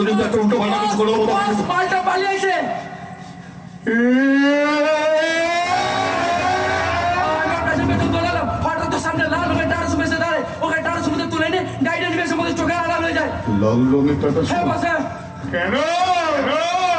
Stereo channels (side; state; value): both; identical; correlation 1.00